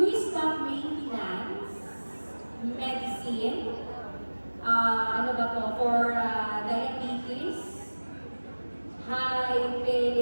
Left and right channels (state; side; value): inverted; both; correlation -1.00